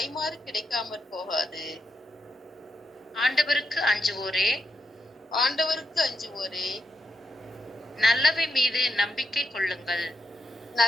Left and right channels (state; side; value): normal; both; correlation 0.82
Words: கிடைக்காமற் போகாது. ஆண்டவருக்கு அஞ்சுவோரே, ஆண்டவருக்கு அஞ்சுவோரே, நல்லவை மீது நம்பிக்கை கொள்ளுங்கள்.